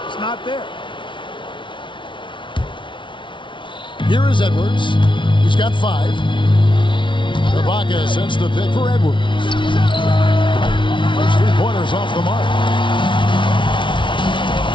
It's not there. Here is Edwards. He's got 5. Ibaka sends the pick for Edwards. Those 3-pointers off the mark.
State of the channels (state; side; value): late; right; 0.24 ms